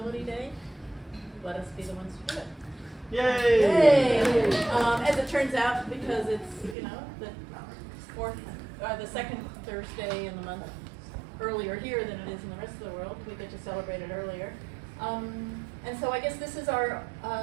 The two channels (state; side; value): drops out; left; at 6.8 s